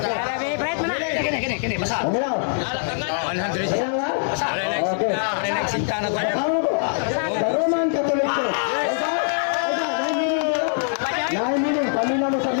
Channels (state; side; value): silent; right; 64 dB below the other